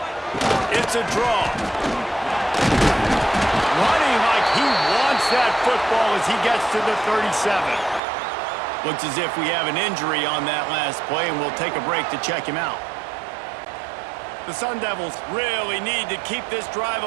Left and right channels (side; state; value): left; drops out; at 8.0 s